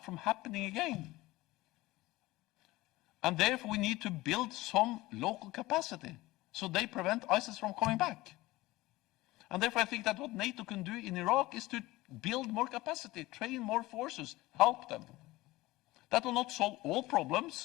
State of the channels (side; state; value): right; quieter; 19.1 dB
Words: from happening again. And therefore we need to build some local capacity so they prevent ISIS from coming back. And therefore I think that what NATO can do in Iraq is to build more capacity, train more forces, help them. That will not solve all